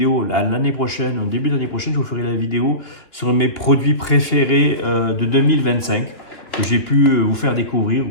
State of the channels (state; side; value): late; right; 3.1 ms